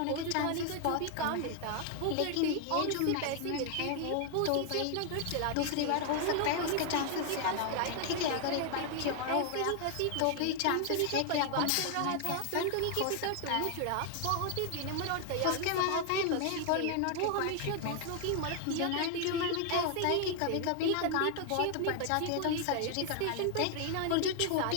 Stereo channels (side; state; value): both; different; correlation 0.00